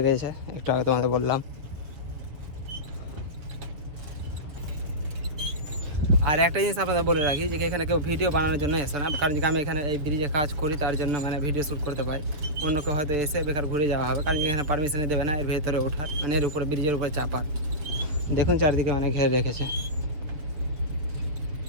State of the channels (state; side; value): late; left; 6.7 ms